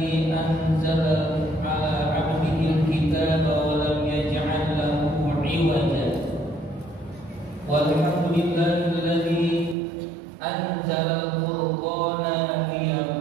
anzala ala 'abdihi al-kitaba wa lam yaj'al lahu 'iwaja. Walhamdulillahilladzi anzala al-furqana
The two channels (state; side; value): drops out; left; at 9.8 s